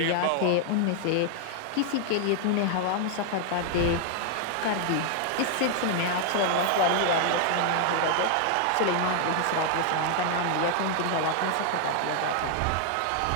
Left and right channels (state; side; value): different; both; correlation 0.00